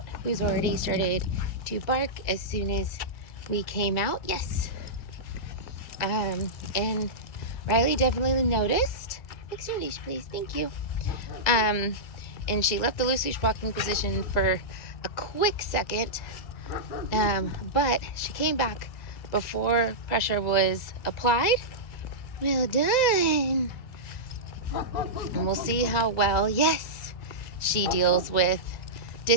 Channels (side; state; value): right; late; 2.0 ms